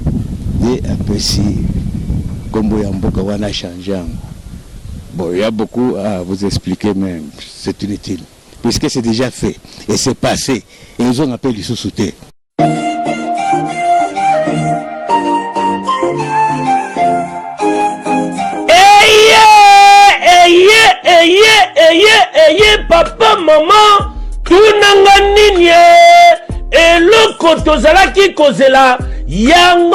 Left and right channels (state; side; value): identical; both; correlation 1.00